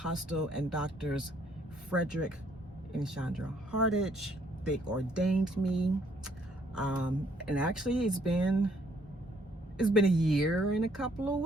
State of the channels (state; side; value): normal; both; correlation 0.66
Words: and Doctors Frederick and Chandra Hardage, they ordained me. And actually it's been a year and a couple of